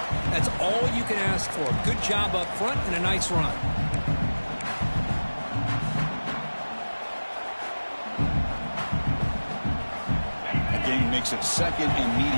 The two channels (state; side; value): inverted; both; correlation -1.00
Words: That's all you can ask for. Good job up front and a nice run. The game makes it second and